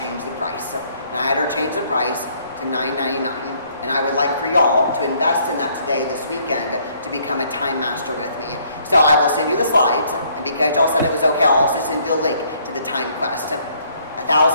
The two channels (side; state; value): both; inverted; correlation -0.65